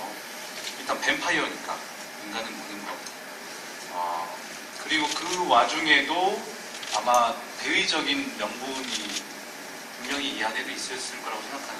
일단 뱀파이어니까 인간은 무는 것. 그리고 그 와중에도 아마 대의적인 명분이 분명히 이 안에도 있었을 거라고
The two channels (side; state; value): both; identical; correlation 1.00